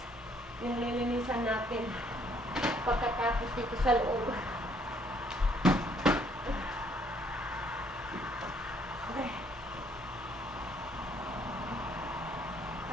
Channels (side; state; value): both; normal; correlation 0.65